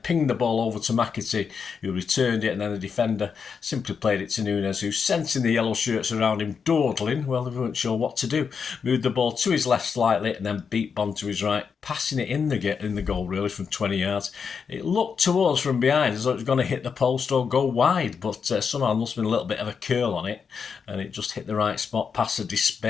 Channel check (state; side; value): quieter; right; 6.1 dB